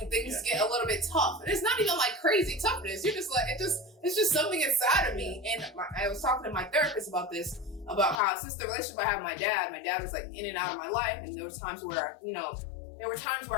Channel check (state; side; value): drops out; right; at 8.2 s